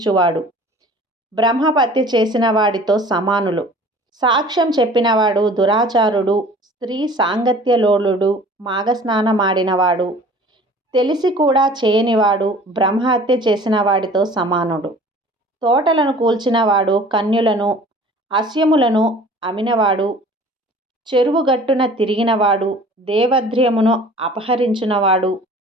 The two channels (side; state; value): both; normal; correlation 0.47